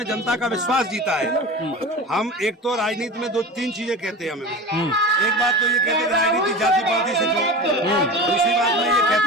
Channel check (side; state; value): both; normal; correlation 0.31